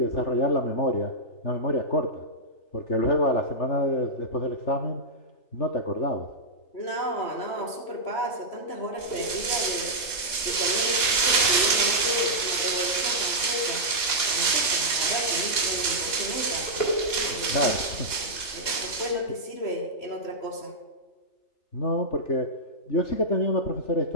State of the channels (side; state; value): right; late; 3.3 ms